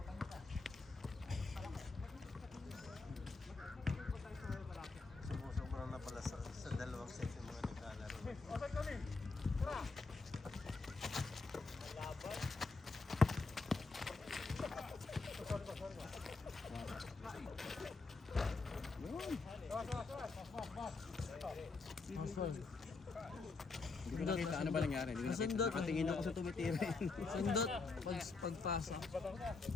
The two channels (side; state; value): right; quieter; 4.0 dB